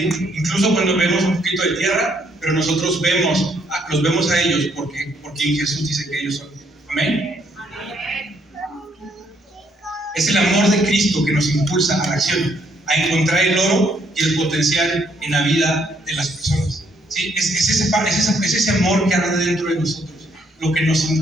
Incluso cuando vemos un poquito de tierra, pero nosotros los vemos a ellos porque en Jesús dice que ellos son. Amén. Es el amor de Cristo que nos impulsa a la acción, a encontrar el oro y el potencial en la vida de las personas. ¿Sí? Es ese amor que arde dentro de nosotros lo que nos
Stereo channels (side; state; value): both; normal; correlation 0.70